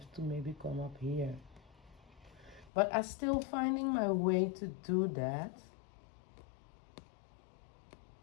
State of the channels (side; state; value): right; drops out; at 2.7 s